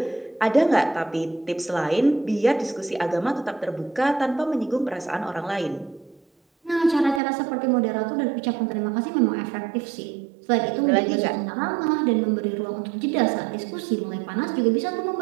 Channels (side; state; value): left; drops out; at 7.2 s